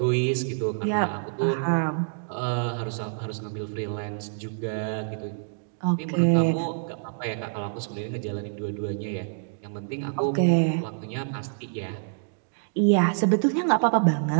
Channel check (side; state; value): left; silent; digital silence